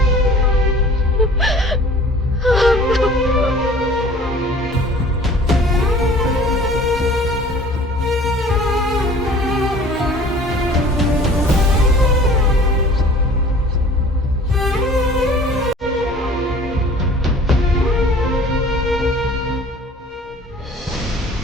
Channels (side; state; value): both; normal; correlation 0.48